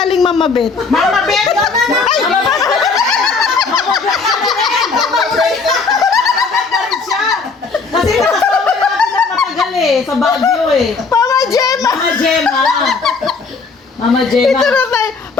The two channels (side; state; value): right; quieter; 4.6 dB